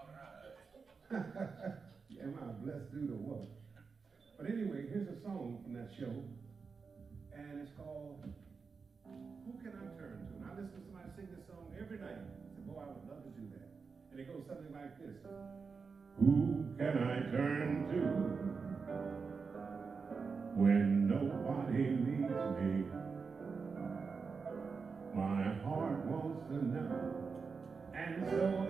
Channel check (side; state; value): left; quieter; 5.1 dB